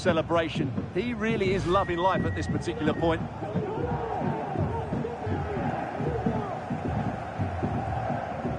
He really is loving life at this particular point.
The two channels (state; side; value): identical; both; correlation 1.00